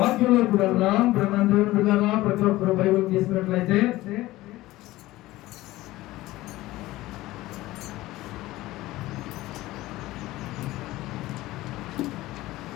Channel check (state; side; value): quieter; right; 17.6 dB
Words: వెళ్దాం. దేవుని బిడ్డలారా, ప్రతి ఒక్కరు బైబిల్ తీసుకున్నట్లయితే